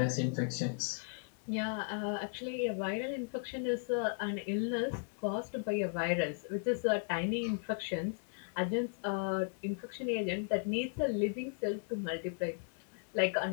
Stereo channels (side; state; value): right; silent; 54 dB below the other